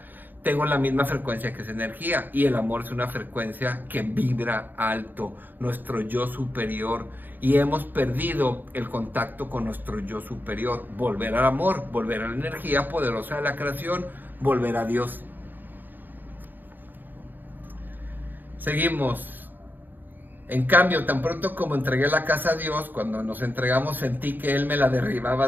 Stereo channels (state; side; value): late; left; 0.089 ms